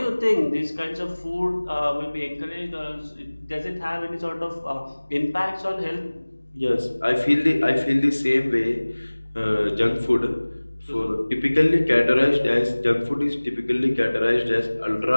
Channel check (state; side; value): inverted; both; correlation -1.00